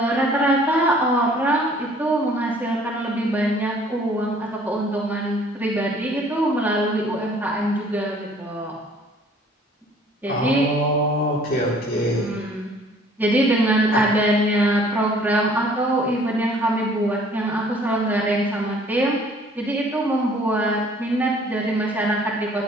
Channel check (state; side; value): normal; both; correlation 0.55